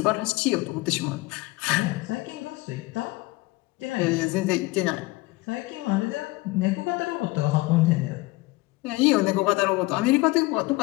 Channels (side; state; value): right; quieter; 21.4 dB